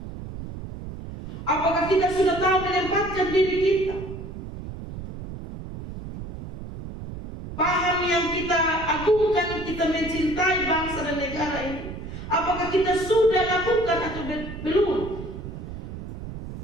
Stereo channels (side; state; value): right; noise; rumble, 10 dB below the sound